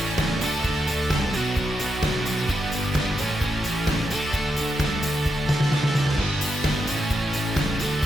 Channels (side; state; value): both; normal; correlation 0.84